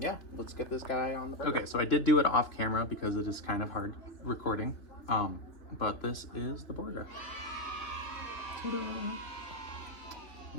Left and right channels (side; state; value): right; late; 3.1 ms